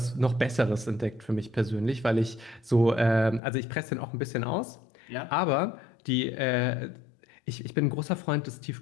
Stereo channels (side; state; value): right; drops out; at 3.4 s